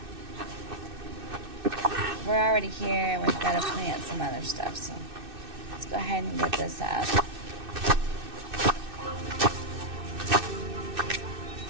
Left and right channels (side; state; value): left; late; 2.6 ms